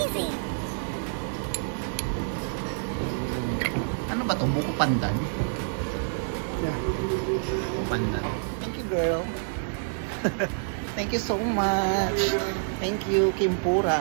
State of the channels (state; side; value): silent; left; digital silence